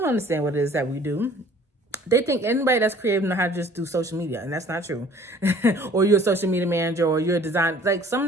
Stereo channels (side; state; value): both; normal; correlation 0.53